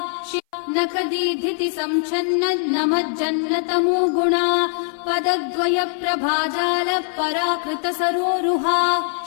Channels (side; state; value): right; silent; 59 dB below the other